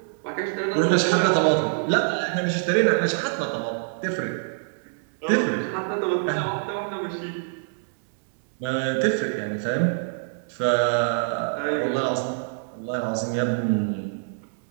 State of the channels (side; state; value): left; silent; digital silence